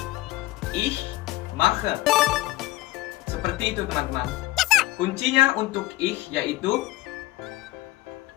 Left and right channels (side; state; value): right; quieter; 18.3 dB